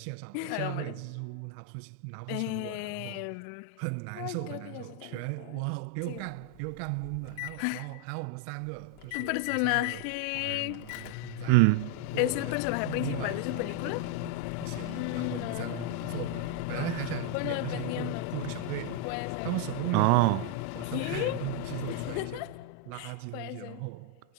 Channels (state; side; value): different; both; correlation 0.00